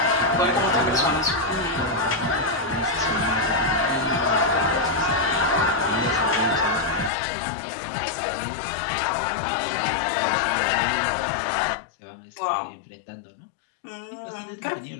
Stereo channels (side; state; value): right; drops out; at 7.1 s